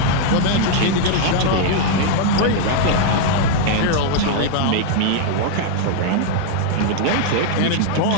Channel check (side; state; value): both; different; correlation 0.00